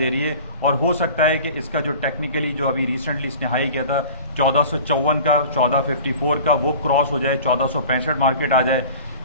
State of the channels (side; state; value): both; inverted; correlation -0.41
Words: رہی ہے, اور ہو سکتا ہے کہ اس کا جو ٹیکنیکلی جو ابھی ریسنٹلی اس نے ہائی کیا تھا 1454 کا, 1454 کا, وہ کراس ہو جائے, 1465 مارکیٹ آ جائے.